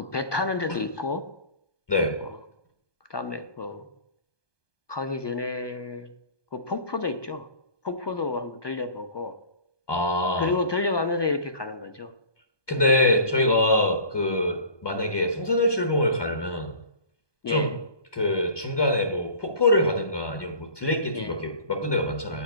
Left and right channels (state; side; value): late; right; 1.2 ms